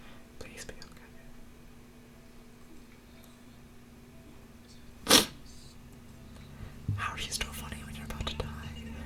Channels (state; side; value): identical; both; correlation 1.00